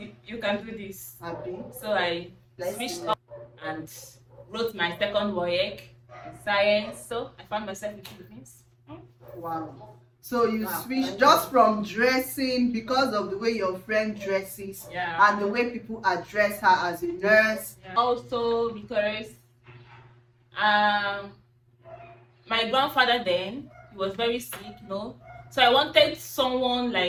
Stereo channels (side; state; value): both; identical; correlation 1.00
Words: you can do this. Happy? So I switched up and wrote my second WAEC in science. So I found myself in Philippines. Wow. So you switched just from dressing because of the way your friend dresses, Yeah. and the way people address her as a nurse. Yeah. Also because my grandfather then, he was very sick, So I wanted someone